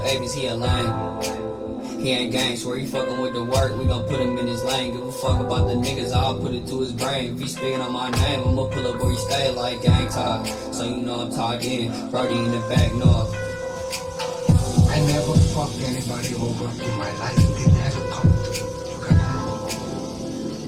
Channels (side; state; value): both; identical; correlation 1.00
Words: Avis, he a lame. He ain't gang, swear he fucking with the work, we gon' put him in his lane. Give a fuck about the niggas, I'll put it to his brain. If he speaking on my name, I'ma pull up where he stay like gang talk. So you know I'm talked in, Brody in the back north. I never fucked anybody over in my life, it never come.